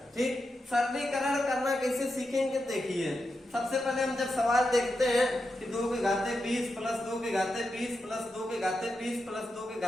ठीक, सरलीकरण करना कैसे सीखेंगे, देखिए सबसे पहले हम जब सवाल देखते हैं कि 2 के घाते 20 प्लस 2 के घाते 20 प्लस 2 के घाते 20 प्लस 2 के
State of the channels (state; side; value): normal; both; correlation 0.88